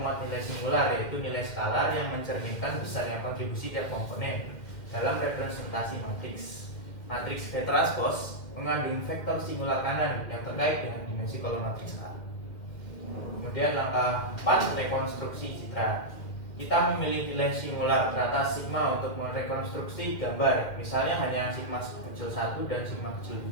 nilai singular, yaitu nilai skalar yang mencerminkan besarnya kontribusi tiap komponen dalam representasi matriks. Matriks V transpose mengandung vektor singular kanan yang terkait dengan dimensi kolom matriks A. Kemudian langkah 4, rekonstruksi citra. Kita memilih nilai singular teratas sigma untuk merekonstruksi gambar. Misalnya hanya sigma kecil 1 dan sigma kecil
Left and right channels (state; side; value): late; right; 2.3 ms